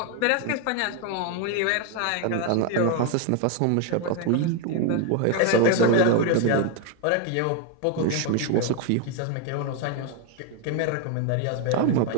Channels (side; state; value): both; different; correlation 0.01